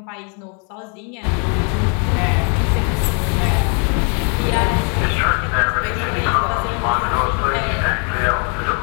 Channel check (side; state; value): right; quieter; 38.2 dB